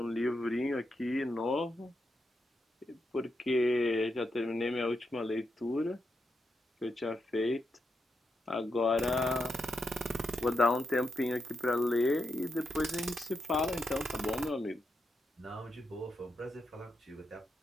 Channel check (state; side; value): normal; both; correlation 0.83